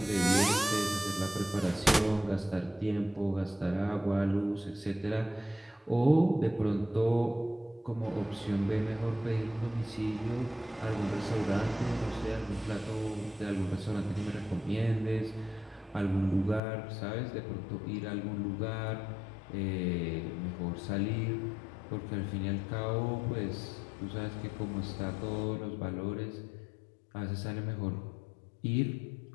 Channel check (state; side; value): drops out; right; at 16.6 s